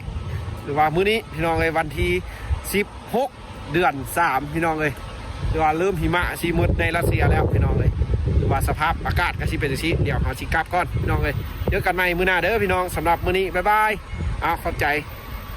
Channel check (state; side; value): identical; both; correlation 1.00